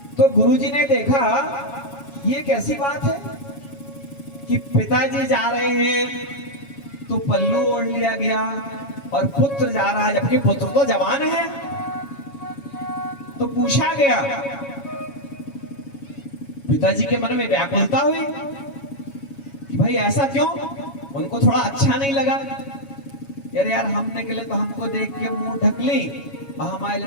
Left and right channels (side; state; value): right; late; 7.2 ms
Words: तो गुरुजी ने देखा ये कैसी बात है कि पिताजी जा रहे हैं तो पल्लू ओढ़ लिया गया और पुत्र जा रहा है, जबकि पुत्र तो जवान है। तो पूछा गया, पिताजी के मन में व्याकुलता हुई कि भाई ऐसा क्यों, उनको थोड़ा अच्छा नहीं लगा। यार हम निकले तो हमको देख के मुंह ढक ली और हमारे